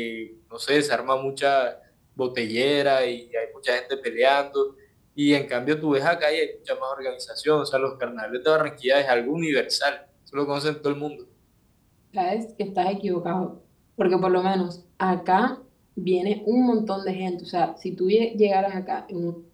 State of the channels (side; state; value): both; identical; correlation 1.00